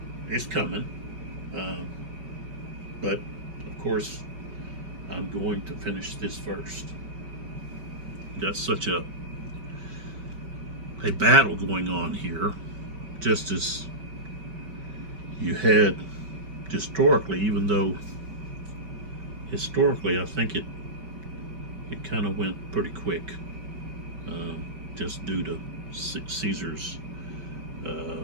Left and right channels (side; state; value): left; late; 5.2 ms